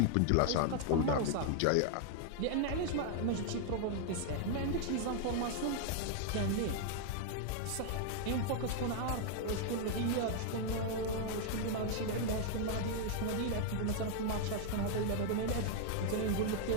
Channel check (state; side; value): different; both; correlation 0.00